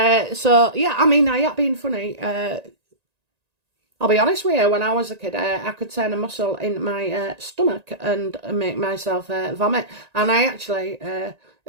So, yeah, I mean, I have been funny. I'll be honest with you, when I was a kid, I could turn a muscle in my stomach and make myself vomit. And I actually,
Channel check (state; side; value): late; left; 1.9 ms